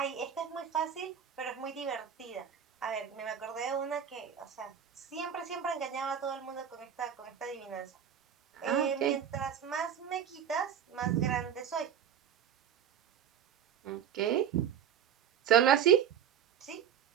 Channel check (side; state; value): left; quieter; 8.6 dB